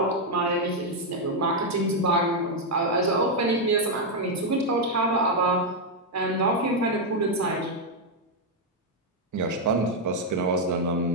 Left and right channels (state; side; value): normal; both; correlation 0.00